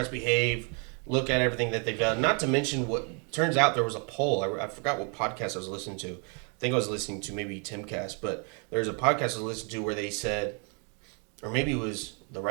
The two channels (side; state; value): left; quieter; 38.3 dB